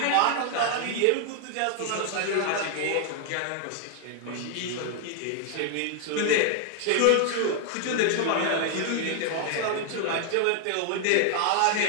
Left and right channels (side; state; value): both; different; correlation 0.00